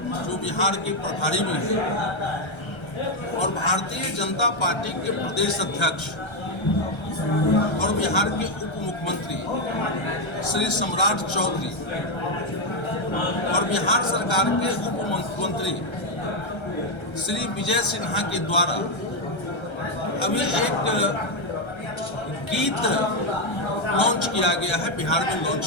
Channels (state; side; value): late; right; 1.3 ms